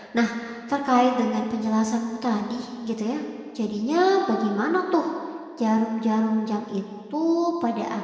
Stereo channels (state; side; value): identical; both; correlation 1.00